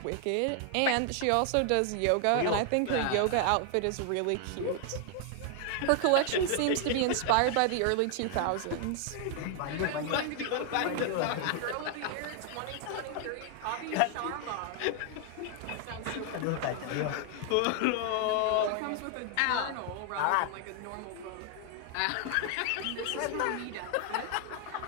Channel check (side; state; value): both; different; correlation 0.00